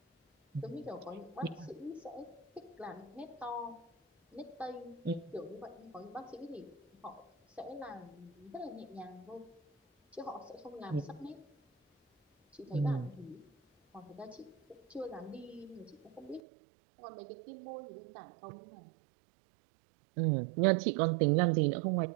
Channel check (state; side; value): drops out; left; at 16.4 s